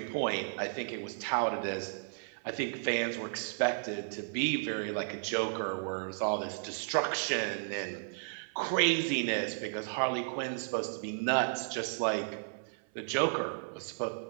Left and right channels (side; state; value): left; silent; 55 dB below the other